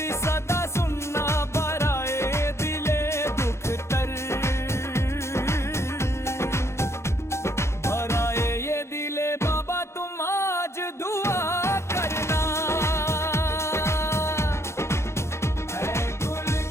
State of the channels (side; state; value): right; late; 0.13 ms